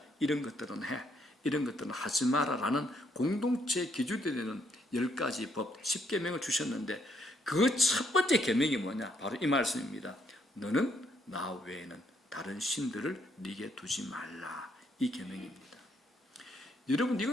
이런 것들은 해, 이런 것들은 하지 마라라는 공동체의 기준이 되는 10가지 법, 10계명을 주셨는데 그 첫 번째 계명이 뭐냐? 바로 이 말씀입니다. 너는 나 외에는 다른 신들을 네게 두지 말라. 이 계명입니다. 여러분,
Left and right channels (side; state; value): both; normal; correlation 0.73